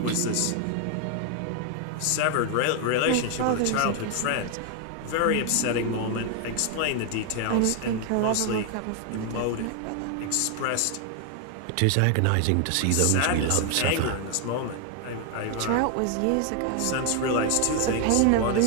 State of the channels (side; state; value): both; different; correlation 0.00